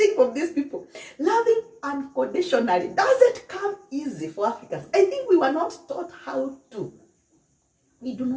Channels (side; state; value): both; identical; correlation 1.00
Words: from these people. Loving unconditionally doesn't come easy for Africans. I think we were not taught how to. We do